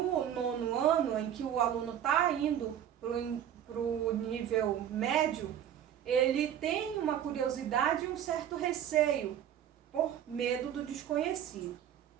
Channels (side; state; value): left; quieter; 10.0 dB